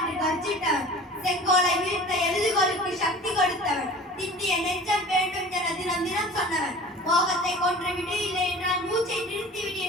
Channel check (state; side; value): normal; both; correlation 0.41